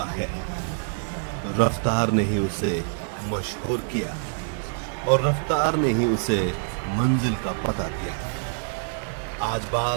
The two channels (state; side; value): silent; left; digital silence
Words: है। रफ्तार ने ही उसे मशहूर किया और रफ्तार ने ही उसे मंजिल का पता दिया। आज